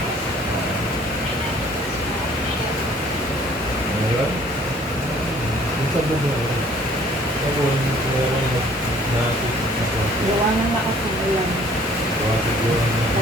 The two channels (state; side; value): normal; both; correlation 0.56